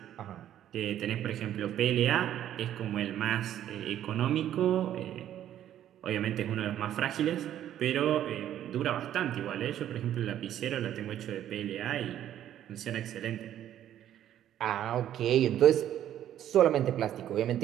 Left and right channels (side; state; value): left; quieter; 11.3 dB